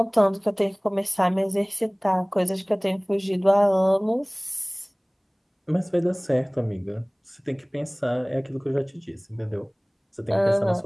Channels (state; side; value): identical; both; correlation 1.00